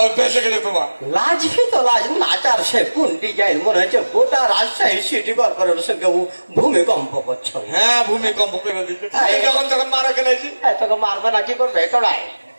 অভ্যাস হয়ে গেল তোমার। লাজবি তো লাজ, নাচার সে কোন ডিজাইন মনে হচ্ছে গোটা রাজশাহী সিটি কর্পোরেশনের সঙ্গে ভূমিকম্প করছো। হ্যাঁ ভূমিকম্প করে দিচ্ছে, যখন তখন মারা গেলেছি। তোকে মারবে না, কি করবে? কড়াই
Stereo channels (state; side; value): inverted; both; correlation -1.00